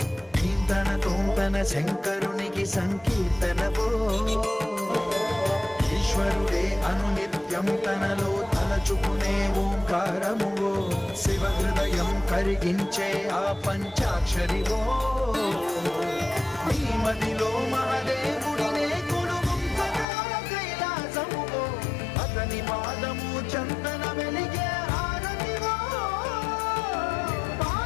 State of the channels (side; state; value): right; drops out; at 20.1 s